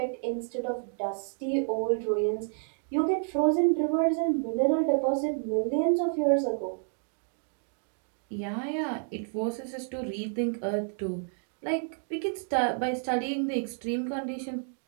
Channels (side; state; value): left; silent; 58 dB below the other